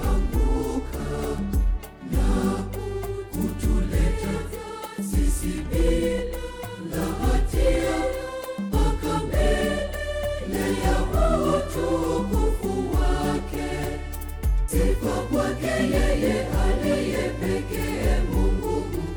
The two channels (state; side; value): identical; both; correlation 1.00